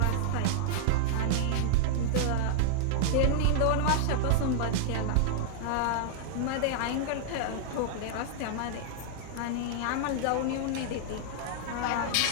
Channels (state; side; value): different; both; correlation -0.01